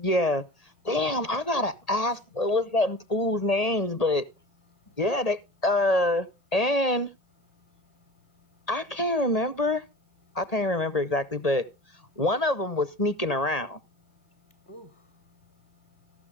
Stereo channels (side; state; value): right; late; 1.8 ms